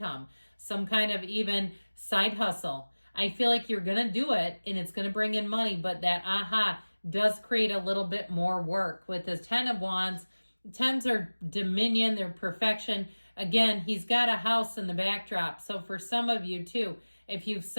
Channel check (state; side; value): inverted; both; correlation -1.00